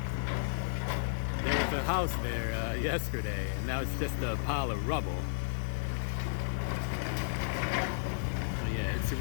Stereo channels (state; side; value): silent; right; digital silence